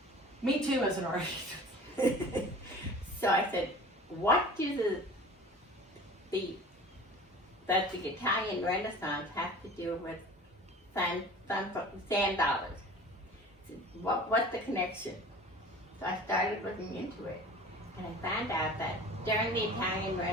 Me too, as an artist. So I said, what do the Italian Renaissance have to do with sand dollars? What's the connection? So I started looking into it, and I found out that during the Italian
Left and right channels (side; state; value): both; normal; correlation 0.42